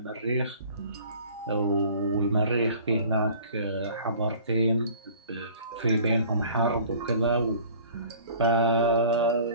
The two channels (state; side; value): inverted; both; correlation -0.48